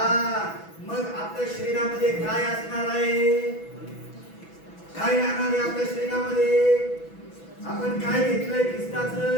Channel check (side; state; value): right; late; 6.1 ms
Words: मग आपल्या शरीरामध्ये काय असणार आहे? काय राहणार आहे आपल्या शरीरामध्ये? आपण काय घेतलंय?